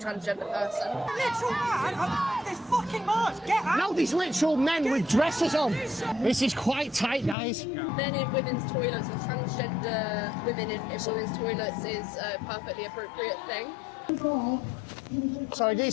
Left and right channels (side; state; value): right; drops out; at 7.4 s